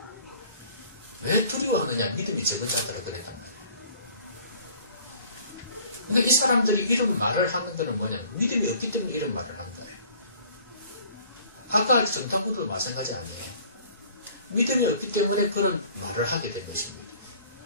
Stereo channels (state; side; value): inverted; both; correlation -0.52